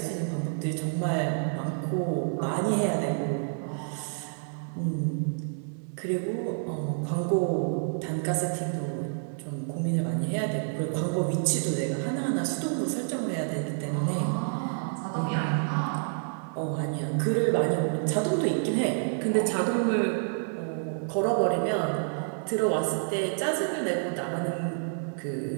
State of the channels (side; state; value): left; silent; 59 dB below the other